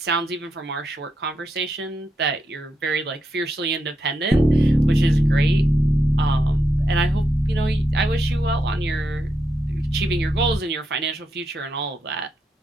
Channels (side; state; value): both; normal; correlation 0.83